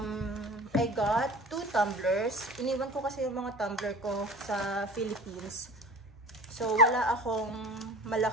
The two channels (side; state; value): both; normal; correlation 0.40